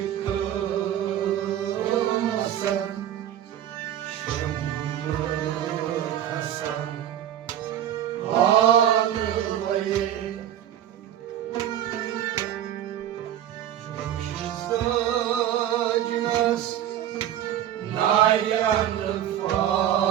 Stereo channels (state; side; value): quieter; left; 11.1 dB